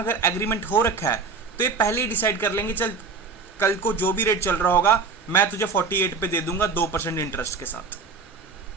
अगर एग्रीमेंट हो रखा है तो ये पहले ही डिसाइड कर लेंगे, चल कल को जो भी रेट चल रहा होगा मैं तुझे 48 पे दे दूंगा 2% इंटरेस्ट के साथ।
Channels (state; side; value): quieter; left; 4.7 dB